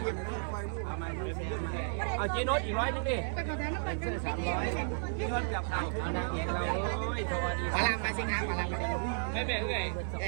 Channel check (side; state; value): left; silent; 56 dB below the other